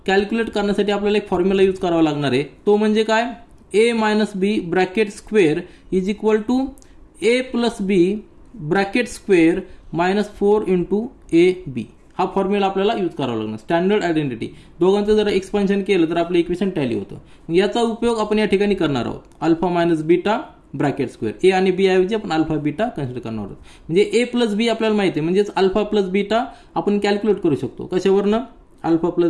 कॅल्क्युलेट करण्यासाठी आपल्याला एक फॉर्म्युला यूज करावा लागणार आहे. तो म्हणजे काय? A minus b bracket square is equal to a plus b bracket square minus 4 into a b. हा फॉर्म्युला आपल्याला यूज करावा लागणार. स्टँडर्ड आयडेंटिटी दोघांचं जर एक्सपान्शन केलं तर आपलं इक्वेशन टॅली होतं. याचा उपयोग आपण या ठिकाणी करणार आहोत. Alpha minus beta bracket square a आणि बी ऐवजी आपण अल्फा बीटा कन्सिडर करणार आहोत. म्हणजे ए प्लस बी आपल्याला माहिती आहे म्हणजेच अल्फा प्लस बीटा आपण कॅल्क्युलेट करू शकतो. कशावरनं? Alpha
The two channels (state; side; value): identical; both; correlation 1.00